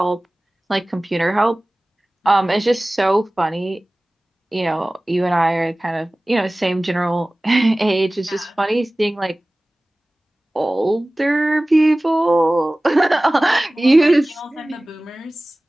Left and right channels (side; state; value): both; normal; correlation 0.98